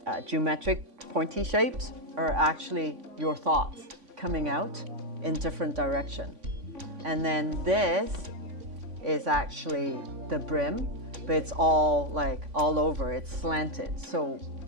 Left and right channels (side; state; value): left; late; 3.5 ms